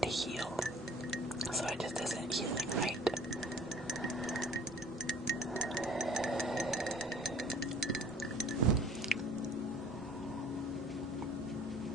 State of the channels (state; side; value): normal; both; correlation 0.51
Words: to heal. So it just isn't healing right.